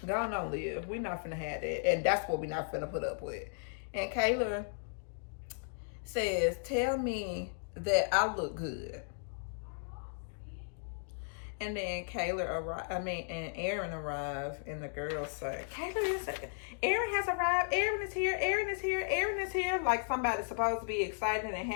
go on, Liv. We're not finna have that. And that's what we're not finna put up with. And Kayla says, tell me that I look good. And then and Aaron arrived, and the girls say, Aaron has arrived, Aaron is here, Aaron is here, Aaron is here. Like somebody's supposed to be excited and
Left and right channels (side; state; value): right; silent; digital silence